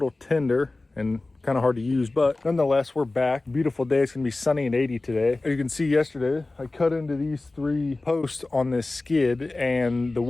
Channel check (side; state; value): right; quieter; 3.1 dB